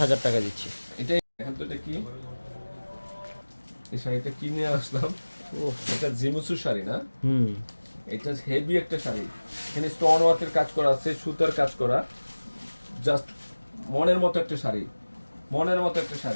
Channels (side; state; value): both; inverted; correlation -1.00